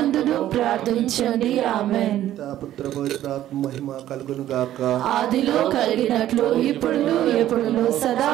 ప్రార్థించండి. ఆమేన్. పుత్ర పవిత్రాత్మ మహిమ కలుగును గాక. ఆదిలో కలిగినట్లు ఇప్పుడు ఎప్పుడు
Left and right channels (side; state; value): left; quieter; 12.8 dB